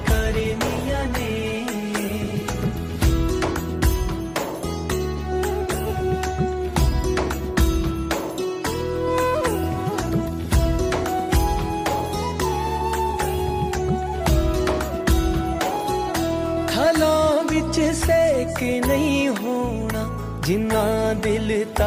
करनियां ने। विच सेक नहीं होना जिन्ना दिल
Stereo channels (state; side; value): identical; both; correlation 1.00